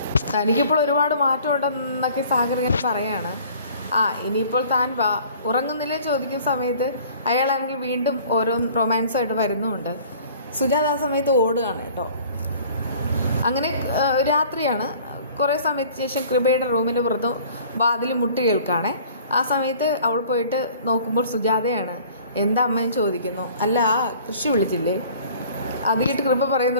തനിക്കിപ്പോൾ ഒരുപാട് മാറ്റം ഉണ്ടെന്നൊക്കെ സാഗർ ഇങ്ങനെ പറയാണ്. ഇനിയിപ്പോൾ താൻ വാ, ഉറങ്ങുന്നില്ലേ ചോദിക്കുന്ന സമയത്ത് അയാളാണെങ്കിൽ വീണ്ടും ഓരോ റൊമാൻസായിട്ട് വരുന്നുമുണ്ട്. സുജാത ആ സമയത്ത് ഓടുകയാണ് കേട്ടോ. അങ്ങനെ രാത്രിയാണ്. കുറേ സമയത്തിന് ശേഷം കൃപയുടെ റൂമിൻ്റെ പുറത്ത് വാതിൽ മുട്ടി കേൾക്കുകയാണേ. ആ സമയത്ത് അവൾ പോയിട്ട് നോക്കുമ്പോൾ സുജാതയാണ്. എന്താ അമ്മയും ചോദിക്കുന്നു. അല്ല, കൃഷി വിളിച്ചില്ലേ? അത് കേട്ട് കൃപ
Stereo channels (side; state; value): both; inverted; correlation -0.51